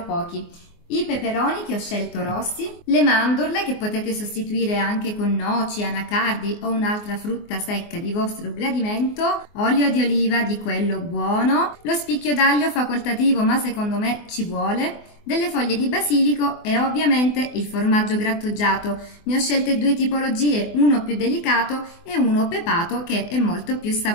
pochi. I peperoni che ho scelto rossi, le mandorle che potete sostituire anche con noci, anacardi o un'altra frutta secca di vostro gradimento, olio di oliva di quello buono, lo spicchio d'aglio facoltativo ma secondo me ci vuole, delle foglie di basilico e ovviamente il formaggio grattugiato. Ne ho scelte due tipologie, uno più delicato e uno pepato che è molto più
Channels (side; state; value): right; late; 24 ms